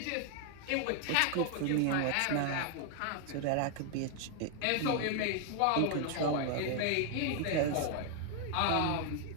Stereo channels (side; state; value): both; different; correlation 0.00